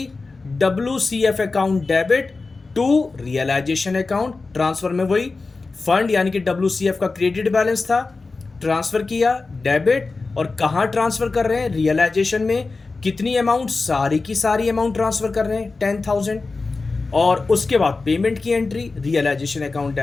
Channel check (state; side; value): quieter; right; 3.8 dB